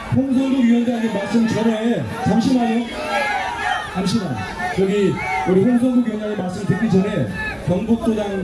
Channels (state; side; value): identical; both; correlation 1.00